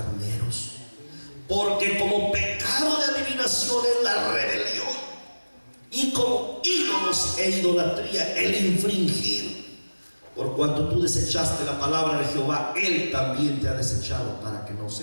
Porque como pecado de adivinación es la rebelión, y como ídolos e idolatría el infringir. Por cuanto tú desechaste la palabra de Jehová, Él también te ha desechado para que no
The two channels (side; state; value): both; inverted; correlation -1.00